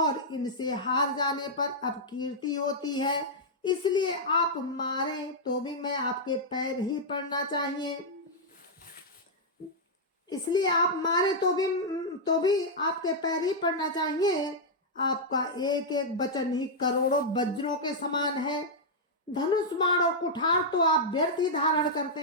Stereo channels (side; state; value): both; normal; correlation -0.06